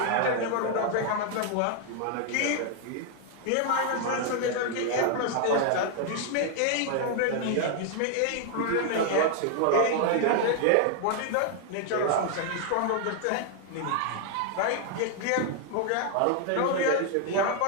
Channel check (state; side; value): different; both; correlation 0.00